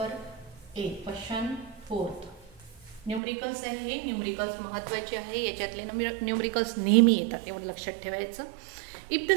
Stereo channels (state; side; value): drops out; left; at 3.2 s